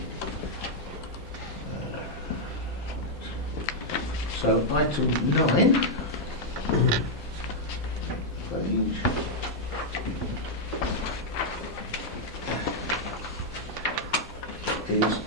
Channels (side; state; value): both; normal; correlation -0.04